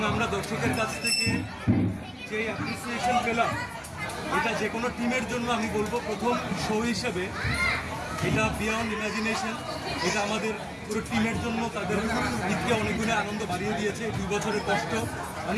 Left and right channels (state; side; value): identical; both; correlation 1.00